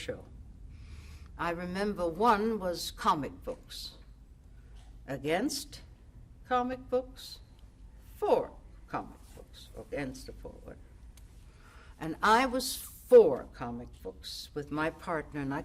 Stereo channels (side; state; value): both; identical; correlation 1.00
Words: I remember one was comic books. Against comic books, for comic books, against or for. And I was for comic books with my partner, and I